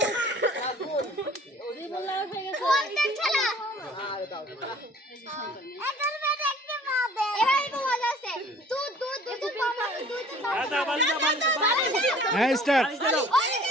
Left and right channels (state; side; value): normal; both; correlation 0.51